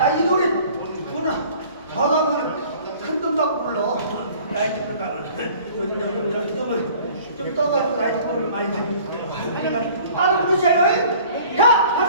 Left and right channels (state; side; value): inverted; both; correlation -0.50